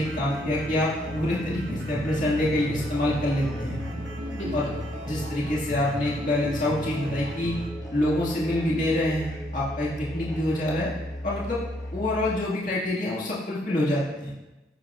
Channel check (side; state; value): both; normal; correlation 0.70